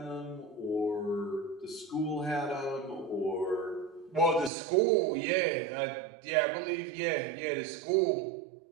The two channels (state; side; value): drops out; left; at 4.5 s